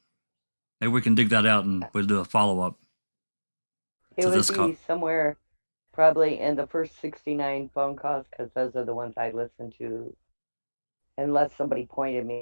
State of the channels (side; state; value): both; inverted; correlation -1.00